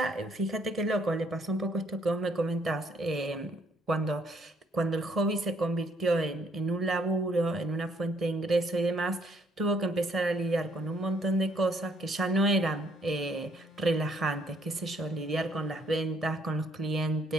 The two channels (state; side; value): normal; both; correlation 0.67